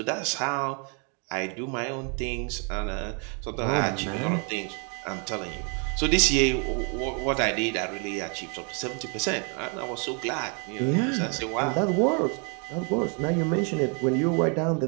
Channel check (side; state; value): left; quieter; 38.1 dB